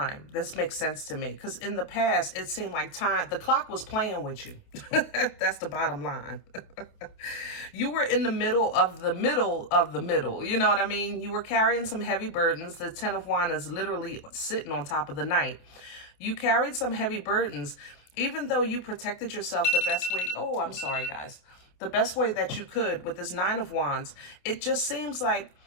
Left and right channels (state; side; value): late; right; 28 ms